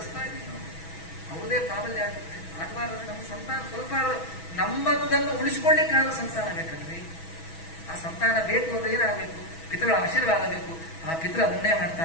ಇದ್ದೀವಿ ನಾವು. ಅವ್ರದೇ ಪ್ರಾಬಲ್ಯ ಆಗುತ್ತೆ. ಆಗಬಾರ್ದು. ನಮ್ಮ ಸಂತಾನ ಸ್ವಲ್ಪ ನಮ್ಮದನ್ನು ಉಳಿಸ್ಕೊಳ್ಳಿಕ್ಕಾದ ಸಂತಾನ ಬೇಕಲ್ರಿ. ಆ ಸಂತಾನ ಬೇಕು ಅಂದ್ರೆ ಏನಾಗಬೇಕು? ಪಿತೃಗಳ ಆಶೀರ್ವಾದ ಬೇಕು. ಆ ಪಿತೃ ಅದನ್ನೇ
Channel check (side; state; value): right; late; 6.1 ms